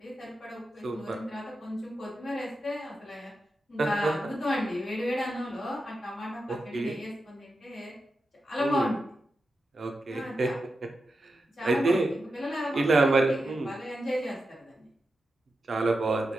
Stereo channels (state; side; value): normal; both; correlation 0.90